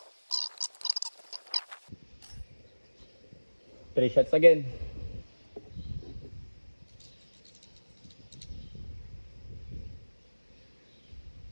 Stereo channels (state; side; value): inverted; both; correlation -1.00